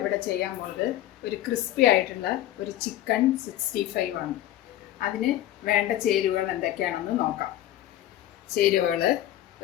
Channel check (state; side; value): quieter; right; 13.4 dB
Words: ചെയ്യാൻ പോകുന്നത് ഒരു ക്രിസ്പി ആയിട്ടുള്ള ഒരു ചിക്കൻ 65 ആണ്. അതിന് വേണ്ട ചേരുവകൾ എന്തൊക്കെയാണെന്ന് നോക്കാം. ചേരുവകൾ: